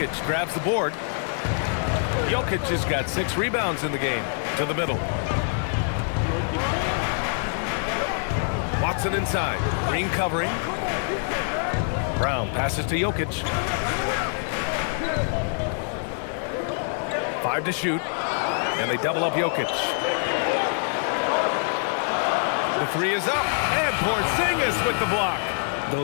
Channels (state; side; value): silent; right; 62 dB below the other